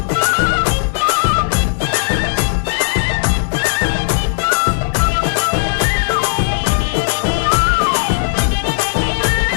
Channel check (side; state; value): right; silent; digital silence